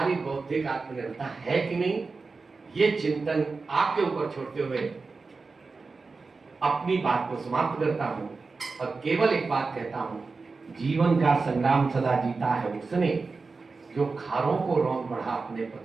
बौद्धिक आत्मनिर्भरता है कि नहीं, ये चिंतन आपके ऊपर छोड़ते हुए अपनी बात को समाप्त करता हूं और केवल एक बात कहता हूं, जीवन का संग्राम सदा जीता है उसने जो खारों को रौंद बढ़ा अपने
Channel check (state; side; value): quieter; left; 4.2 dB